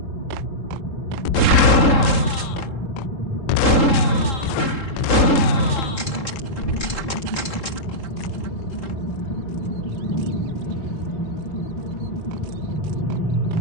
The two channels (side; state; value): right; late; 3.7 ms